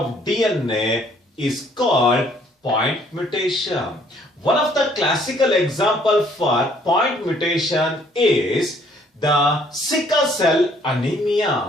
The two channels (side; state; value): both; normal; correlation 0.62